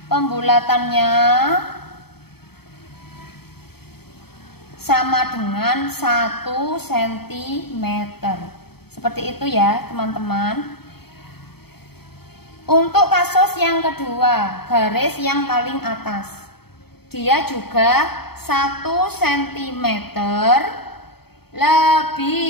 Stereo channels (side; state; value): right; late; 0.96 ms